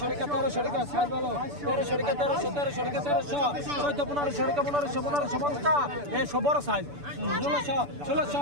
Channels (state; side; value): late; left; 6.9 ms